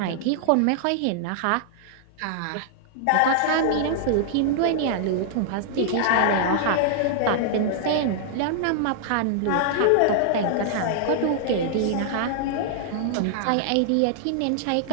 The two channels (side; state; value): both; different; correlation -0.01